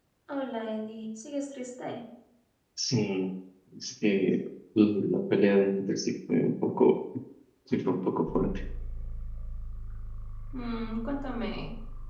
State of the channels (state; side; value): identical; both; correlation 1.00